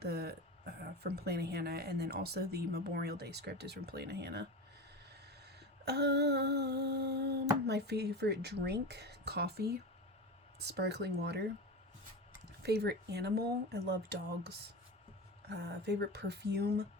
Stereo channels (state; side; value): normal; both; correlation 0.25